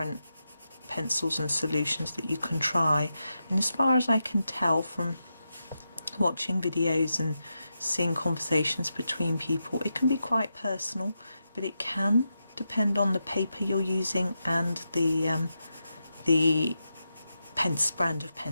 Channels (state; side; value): inverted; both; correlation -0.88